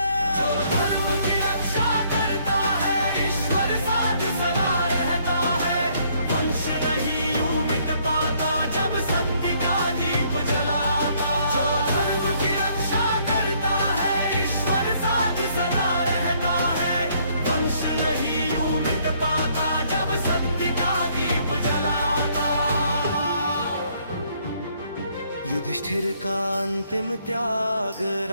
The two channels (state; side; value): inverted; both; correlation -0.66